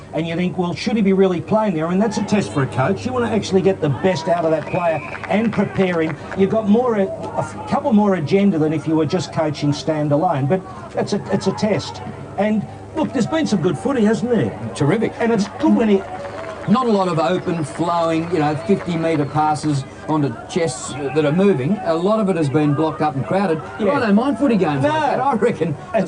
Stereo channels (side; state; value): both; identical; correlation 1.00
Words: and you think, well, should he be really playing there? I mean, that's a test for a coach. You want to actually get the best out of that player and prepare him. You've got a couple more agenda than if you were just coaching standalone, but it's a test. And, look, there's been some good footy, hasn't there? Terrific. And it's good when he... Not a lot of open, flowing, you know, 50-metre passes onto chests that are moving. A lot of it has been blocked up and crowded. Yeah. I don't mind footy games like that. I reckon that